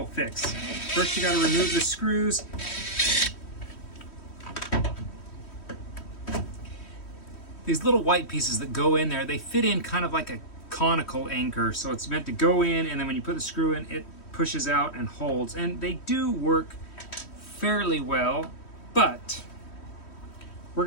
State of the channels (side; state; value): right; late; 3.1 ms